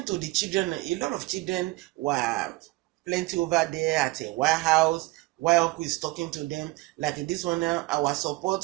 to the children. A lot of children were plenty over there at a White House. while Uncle is talking to them. Like this one now, our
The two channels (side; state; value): left; quieter; 21.4 dB